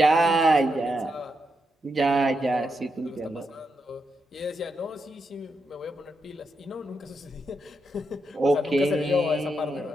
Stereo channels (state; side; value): normal; both; correlation 0.83